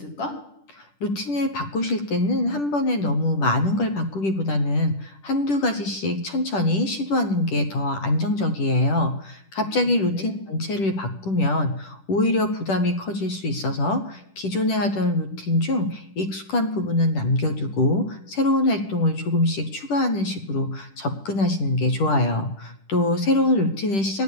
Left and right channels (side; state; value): right; late; 10 ms